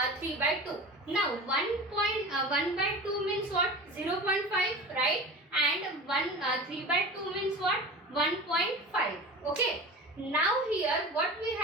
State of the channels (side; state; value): both; normal; correlation 0.33